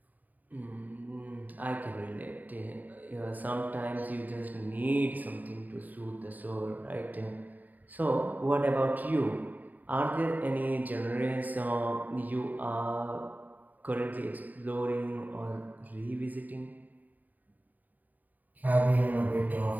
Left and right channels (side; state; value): left; late; 0.083 ms